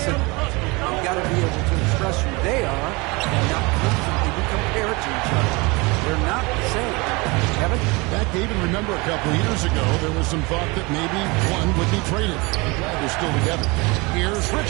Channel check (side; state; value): left; quieter; 25.9 dB